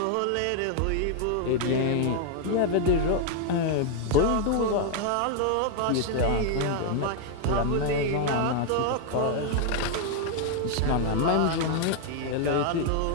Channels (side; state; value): both; different; correlation 0.00